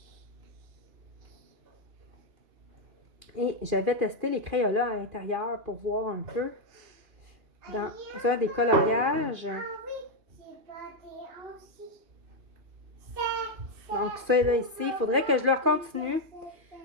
Et j'avais testé les crayons-là à l'intérieur pour voir un peu dans un des coloriages. Donc ça là ici, il faudrait que je le continue.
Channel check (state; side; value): late; left; 2.4 ms